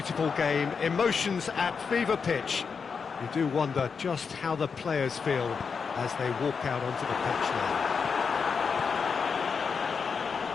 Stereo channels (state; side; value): quieter; right; 5.7 dB